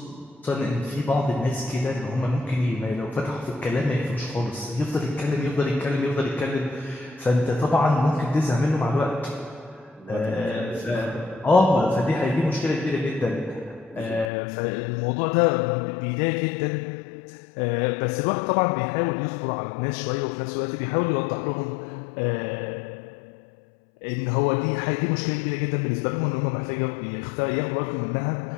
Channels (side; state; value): right; drops out; at 14.3 s